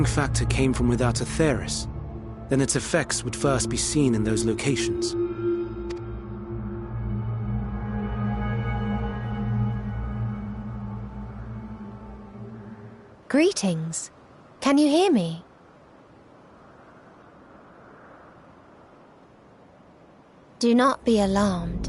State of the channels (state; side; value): identical; both; correlation 1.00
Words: factor came from without Aetheris, then its effects would first be seen in those locations. Greetings. Can you hear me? Do not be